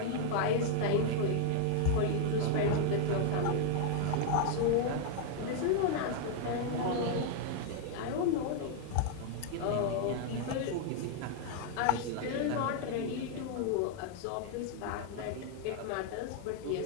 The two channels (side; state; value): both; different; correlation 0.00